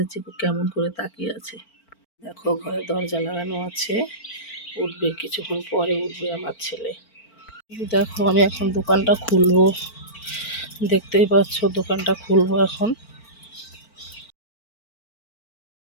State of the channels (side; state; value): right; late; 4.4 ms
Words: চিকু কেমন করে তাকিয়ে আছে। দেখো ঘরে দরজা লাগানো আছে, উঠবে কিছুক্ষণ পরে, উঠবে আমার ছেলে। দেখো আমি এখন দোকানটা খুলবো, দেখতেই পাচ্ছ দোকানটা খুলবো এখন।